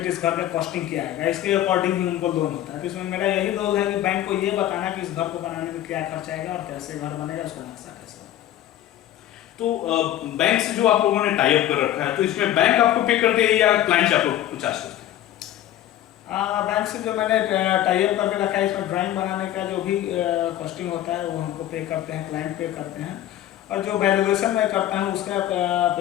इस घर का कॉस्टिंग क्या आएगा, इसके अकॉर्डिंग ही उनको लोन होता है। तो इसमें मेरा यही रोल है कि बैंक को ये बताना कि इस घर को बनाने में क्या खर्च आएगा और कैसे घर बनेगा, उसका नक्शा कैसे। तो बैंक से जो आप लोगों ने टाई अप कर रखा है, तो इसमें बैंक आपको पे करते हैं या क्लाइंट से आप लोग चार्ज करते हैं? बैंक से जो मैंने टाई अप करके रखा है, इसमें ड्राइंग बनाने का जो भी कॉस्टिंग होता है वो हमको पे करते हैं, क्लाइंट पे करते हैं, और जो वैल्यूएशन मैं करता हूँ उसका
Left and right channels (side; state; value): right; quieter; 12.6 dB